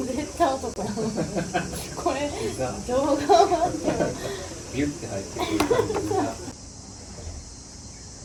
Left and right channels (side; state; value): both; identical; correlation 1.00